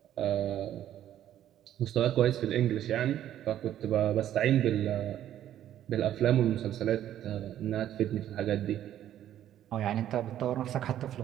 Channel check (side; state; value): left; quieter; 11.5 dB